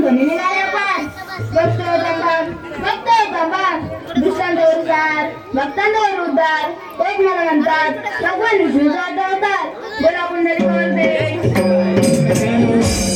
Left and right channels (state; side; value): identical; both; correlation 1.00